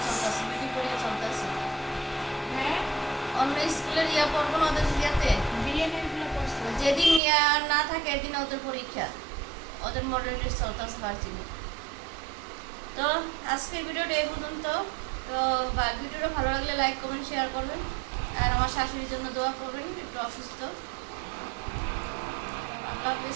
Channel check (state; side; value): drops out; left; at 7.2 s